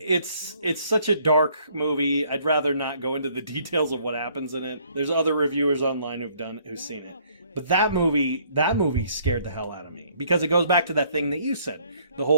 such a dark movie. I'd rather not go into the details of what happens in it. There's other reviewers online who've seen it. But that movie scared the hell out of me, because it goes back to that thing that you said, the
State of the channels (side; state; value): both; inverted; correlation -0.63